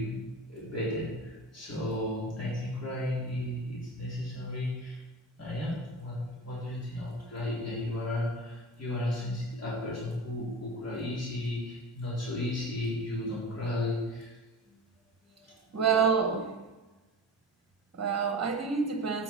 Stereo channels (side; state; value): both; normal; correlation 0.33